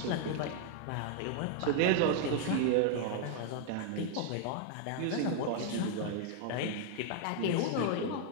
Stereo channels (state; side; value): different; both; correlation 0.00